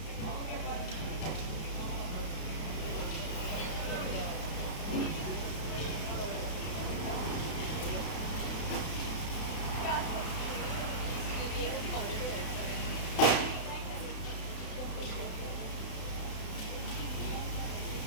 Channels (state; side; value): late; right; 32 ms